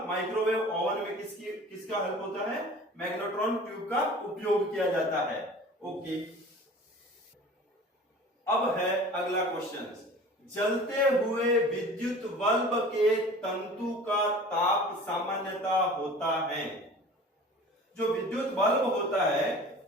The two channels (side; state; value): both; normal; correlation 0.42